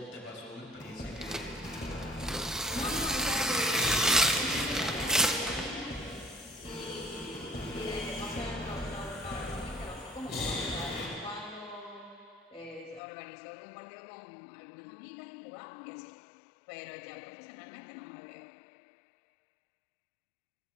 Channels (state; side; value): drops out; right; at 13.0 s